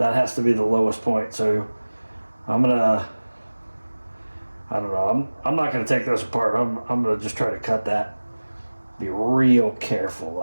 has to be the lowest point. So I don't know. I'm not gonna take this apart. I'm gonna just try to cut that. Be real careful,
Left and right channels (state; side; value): inverted; both; correlation -1.00